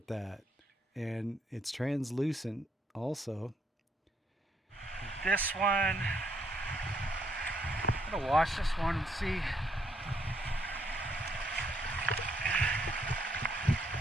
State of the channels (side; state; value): both; normal; correlation 0.72